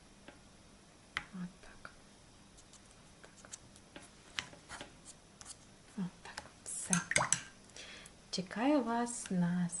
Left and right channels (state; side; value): identical; both; correlation 1.00